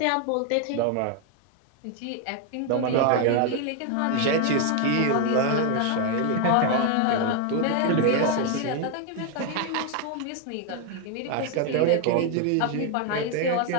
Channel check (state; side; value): different; both; correlation 0.01